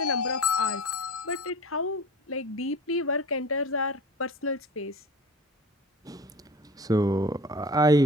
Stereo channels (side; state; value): both; normal; correlation 0.38